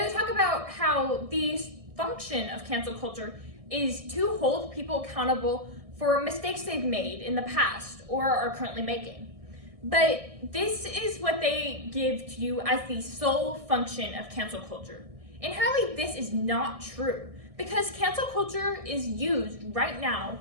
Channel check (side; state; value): left; late; 1.6 ms